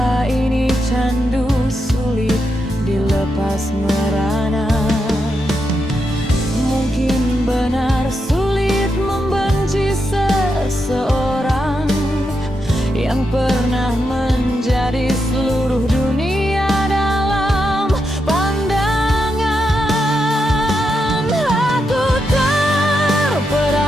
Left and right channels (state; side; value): normal; both; correlation 0.84